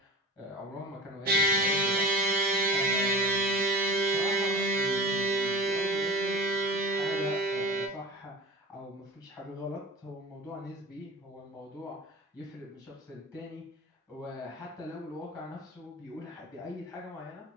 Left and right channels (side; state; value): both; normal; correlation 0.34